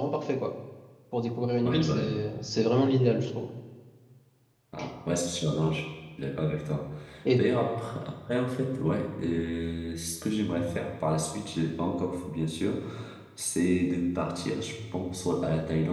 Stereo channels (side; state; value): both; identical; correlation 1.00